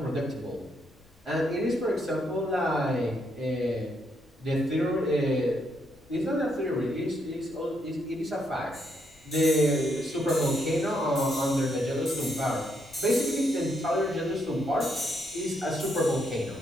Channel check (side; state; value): left; noise; rumble, 30 dB below the sound